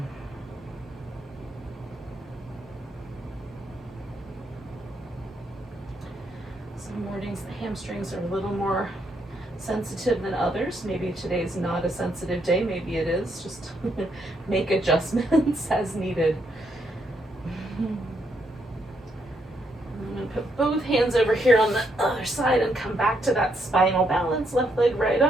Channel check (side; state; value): both; normal; correlation 0.76